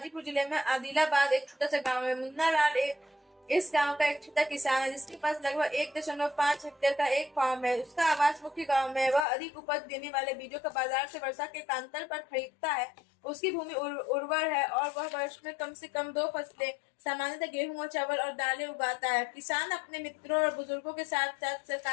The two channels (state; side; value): drops out; right; at 9.2 s